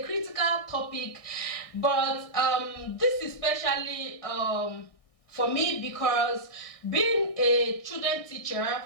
critical topic, but this is especially for me because being a children teacher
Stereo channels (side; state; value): right; late; 1.6 ms